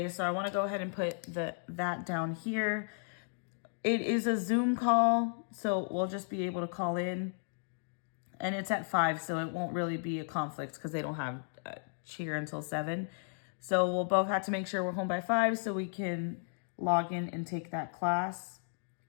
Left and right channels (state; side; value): silent; right; digital silence